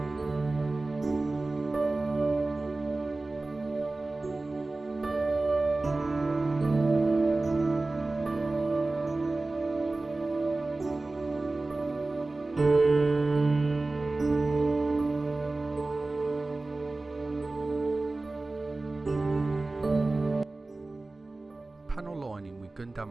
Panel lining with Gundam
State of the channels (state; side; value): quieter; left; 3.2 dB